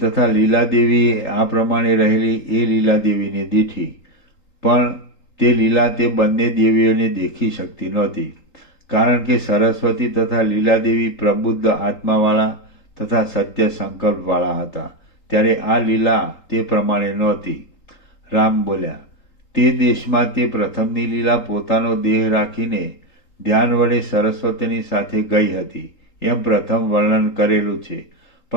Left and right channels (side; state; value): right; late; 3.8 ms